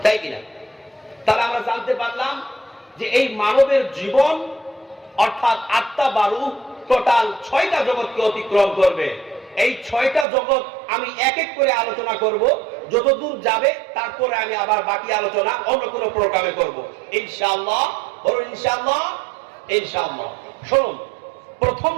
তাই কিনা? তাহলে আমরা জানতে পারলাম যে এই মানবের জীবন অর্থাৎ আত্মা বা রূহ টোটাল 6টা জগৎকে অতিক্রম করবে। এই 6টা জগৎ আমি এক এক করে আলোচনা করব, যতদূর যাবে তারপরে আমি আবার বাকি আলোচনা অন্য কোনো প্রোগ্রামে করব ইনশাআল্লাহ। বলুন ইনশাআল্লাহ। ইনশাআল্লাহ। শুনুন,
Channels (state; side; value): drops out; left; at 10.2 s